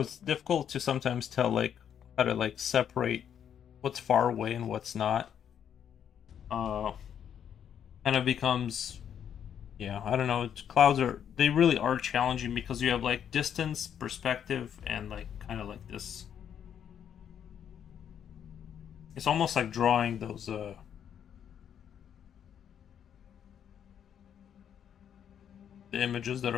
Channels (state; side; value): quieter; right; 8.9 dB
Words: it's difficult to sometimes tell like how to like separate what's far away and what's not. Uh, kind of becomes, yeah, I don't know. Clouds are, they really are challenging because you have like distance, perspective, and like kind of like this. It's almost like drawing those the images that